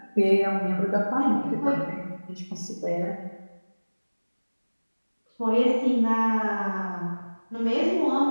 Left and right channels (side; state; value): both; inverted; correlation -1.00